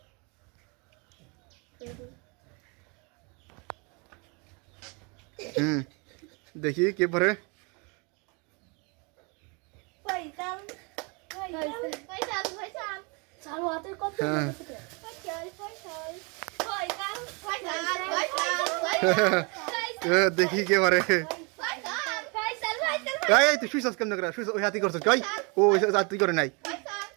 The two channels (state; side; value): quieter; left; 31.7 dB